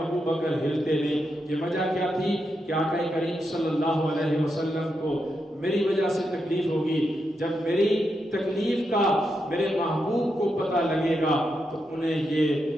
ابو بکر ہلتے نہیں۔ یہ وجہ کیا تھی کہ آقا کریم صلی اللہ علیہ وسلم کو میری وجہ سے تکلیف ہوگی، جب میری تکلیف کا میرے محبوب کو پتہ لگے گا تو انہیں یہ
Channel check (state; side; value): normal; both; correlation 0.84